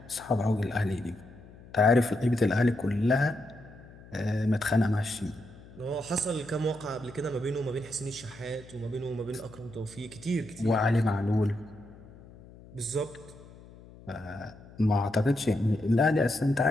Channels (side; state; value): left; noise; hum, 20 dB below the sound